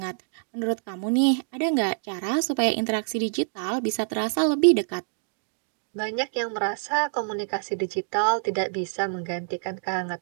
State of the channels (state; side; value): silent; left; digital silence